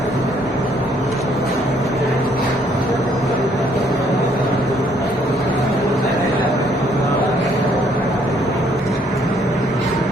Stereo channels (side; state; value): both; normal; correlation 0.66